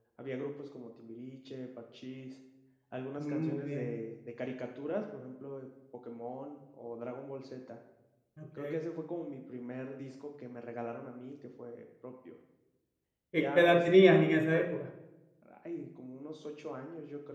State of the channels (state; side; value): identical; both; correlation 1.00